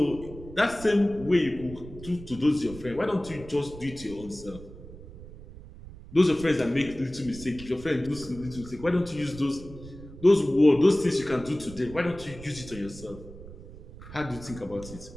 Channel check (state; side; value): noise; right; rumble, 15 dB below the sound